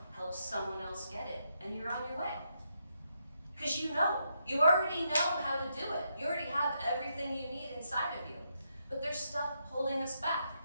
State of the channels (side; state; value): both; inverted; correlation -0.80